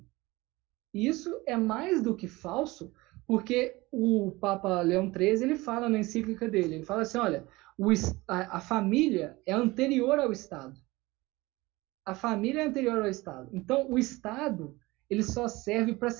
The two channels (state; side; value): quieter; left; 21.3 dB